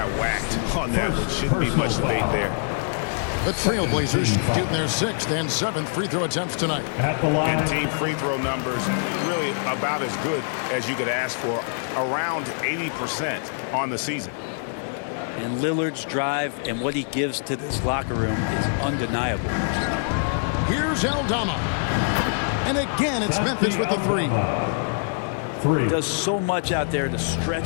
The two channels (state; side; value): silent; right; digital silence